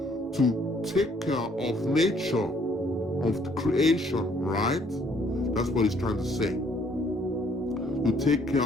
to take care of nature, of the creation, right? That's what he's trying to say. To take care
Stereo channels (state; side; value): normal; both; correlation 0.64